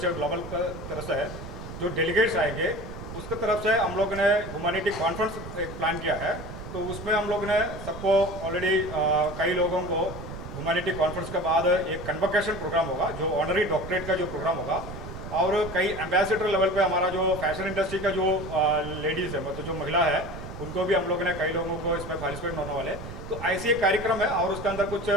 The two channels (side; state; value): right; noise; rumble, 11 dB below the sound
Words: global की तरफ से जो डेलीगेट्स आएंगे उसके तरफ से हम लोग ने ह्यूमैनिटी कॉन्फ्रेंस एक प्लान किया है। तो उसमें हम लोग ने सबको ऑलरेडी कई लोगों को ह्यूमैनिटी कॉन्फ्रेंस के बाद एक कन्वोकेशन प्रोग्राम होगा, जो ऑनरी डॉक्टरेट का जो प्रोग्राम होगा। और कई एम्बेसडर लेवल पे हमारा जो फैशन इंडस्ट्री का जो लेडीज़ है, मतलब जो महिला है, उनको भी हम लोग ने कई लोगों को इसमें पार्टिसिपेट होने वाले। तो ऐसी एक कार्यक्रम है और उसके अंदर कुछ